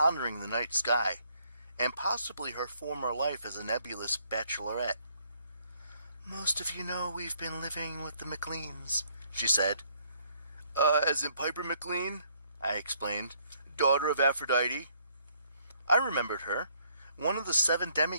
the night sky, and possibly her former life as a nebulous bachelorette. "Most of you know we've been living with the McLeans," she said. As in Piper McLean?" I explained. "Daughter of Aphrodite?" I remembered her, one of the 7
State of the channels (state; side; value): inverted; both; correlation -0.67